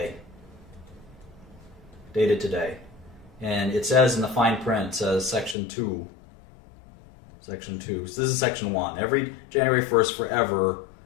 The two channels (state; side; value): drops out; right; at 5.6 s